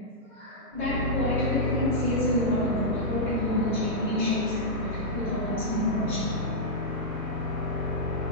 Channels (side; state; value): both; normal; correlation -0.09